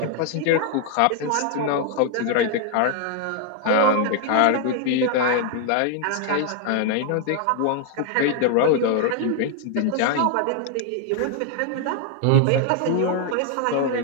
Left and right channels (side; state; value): both; different; correlation 0.00